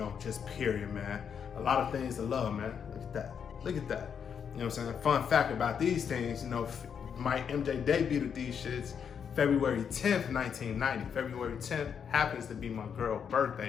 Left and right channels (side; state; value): right; quieter; 7.3 dB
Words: just period, man. A lot of things to love, man. Look at that. Look at that. You know what I'm saying? Fun fact about these things, my MJ debuted these shits February 10th, 1990. February 10th happens to be my girl's